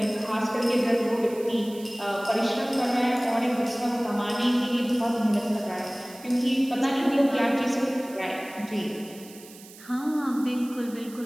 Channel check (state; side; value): noise; right; hiss, 20 dB below the sound